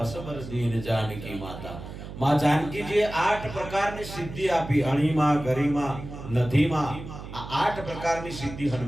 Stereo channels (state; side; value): noise; right; hum, 11 dB below the sound